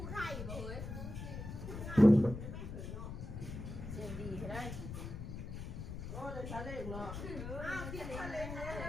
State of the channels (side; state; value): left; noise; rumble, 7 dB below the sound